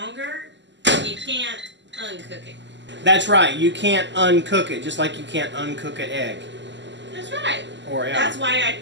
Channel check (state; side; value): late; left; 0.53 ms